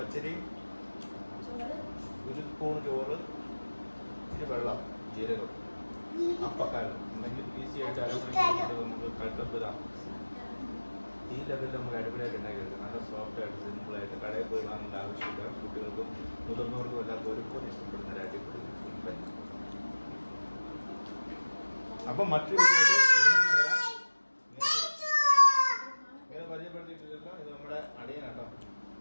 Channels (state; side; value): inverted; both; correlation -1.00